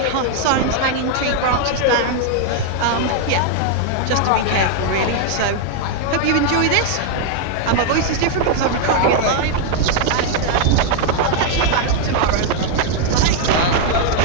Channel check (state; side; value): different; both; correlation 0.00